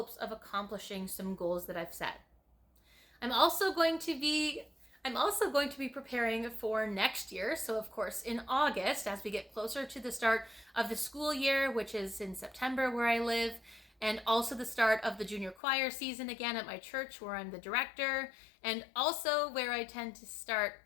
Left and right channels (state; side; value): drops out; right; at 15.6 s